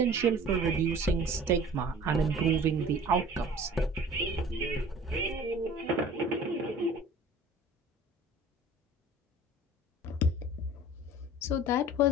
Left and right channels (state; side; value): normal; both; correlation 0.45